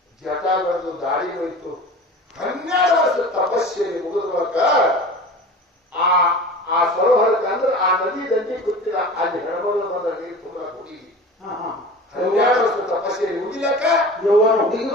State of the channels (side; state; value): both; normal; correlation 0.36